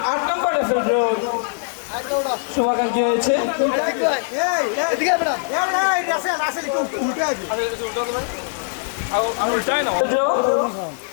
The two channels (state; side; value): silent; right; digital silence